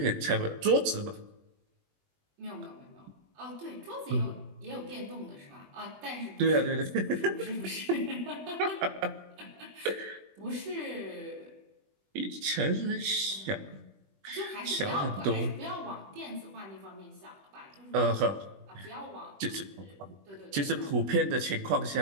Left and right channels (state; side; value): late; left; 20 ms